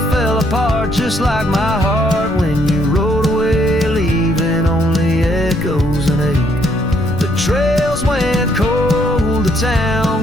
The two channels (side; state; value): left; noise; rumble, 10 dB below the sound